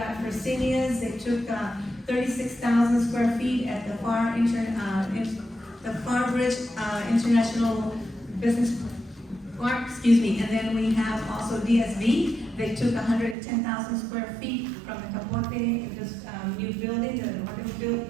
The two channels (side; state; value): left; drops out; at 13.4 s